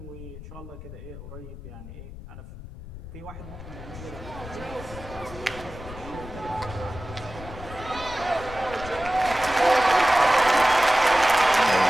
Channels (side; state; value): left; noise; rumble, 13 dB below the sound